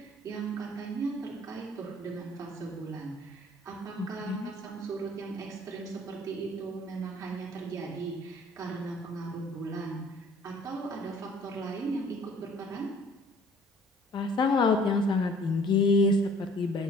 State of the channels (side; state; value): both; normal; correlation 0.54